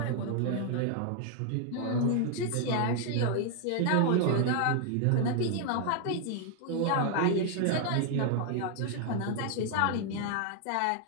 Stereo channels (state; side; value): different; both; correlation 0.00